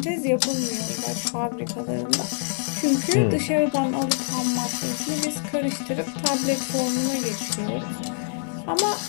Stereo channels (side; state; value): right; silent; 62 dB below the other